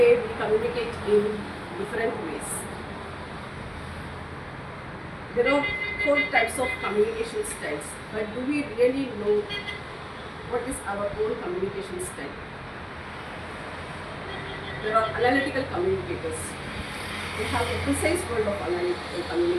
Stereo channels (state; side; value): identical; both; correlation 1.00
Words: we communicate in different ways. There are 4 types of communication styles, but do we really know what is our own communication style? There are analytical communicators. We have a precise world of analytical